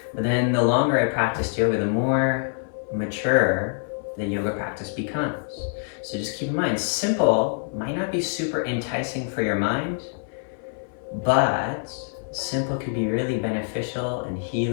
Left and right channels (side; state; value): right; silent; 62 dB below the other